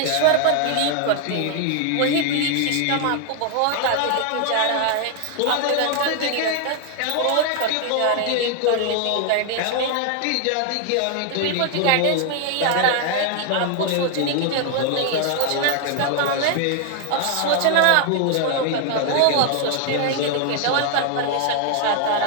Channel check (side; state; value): both; different; correlation 0.00